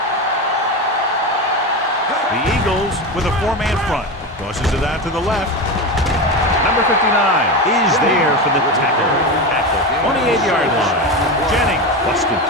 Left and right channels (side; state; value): both; normal; correlation 0.20